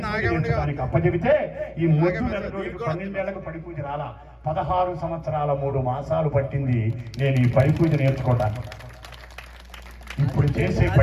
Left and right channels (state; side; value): identical; both; correlation 1.00